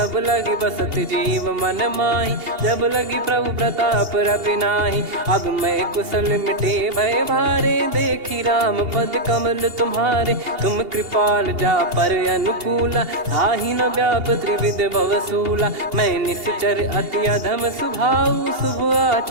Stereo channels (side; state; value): left; late; 2.8 ms